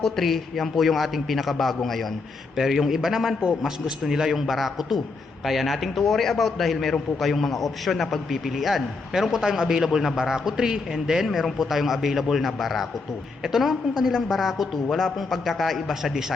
3, yan po yung ating pinakabago ngayon. Pero yung iba naman po, mas gusto nila yung Barako 2. Kaya nating to worry about dahil meron po kayong mga option na pagpipilian. Meron po tayong available na Barako 3 and then meron po tayong available na Barako 2. Ito naman pong kanilang Barako 2, wala pong pagkakaiba sa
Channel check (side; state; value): right; quieter; 4.0 dB